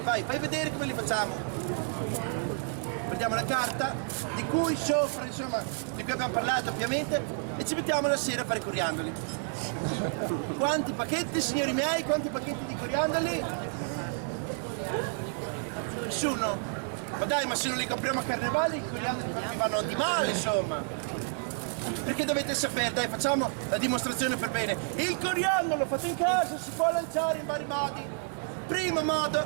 Vai, fai vedere come li facciamo. Prendiamo la carta, di cui sopra, insomma, di cui abbiamo parlato ovviamente, e ci mettiamo la sera a fare i coriandoli. Quanti pacchetti, signori miei, quanti pacchetti di coriandoli? Nessuno? Ma dai, ma se non li compriamo a carnevale, i coriandoli mi vanno di male, insomma. Perché dovete sapere, dai, facciamo la dimostrazione per bene. Il coriandolo fatto in casa si può lanciare in vari modi. Primo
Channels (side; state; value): left; silent; 56 dB below the other